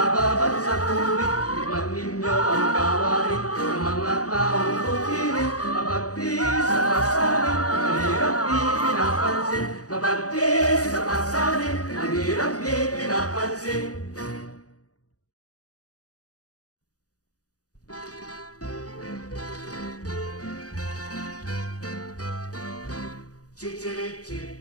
sa tubig. Tikman ninyo ang gawain ng mga taong bukirin. Mabagti sa pasanin, ang hirap di pinapansin. Mabagti sa pasanin, ang hirap di pinapansin.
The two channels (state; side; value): late; right; 0.67 ms